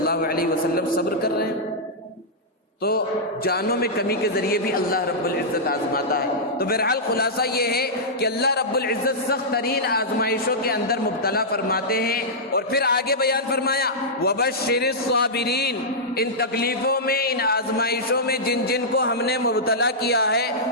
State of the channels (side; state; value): both; normal; correlation -0.11